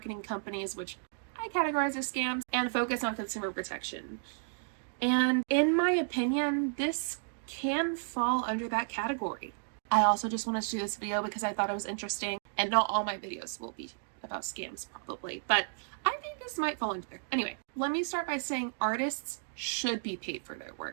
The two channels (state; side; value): silent; left; digital silence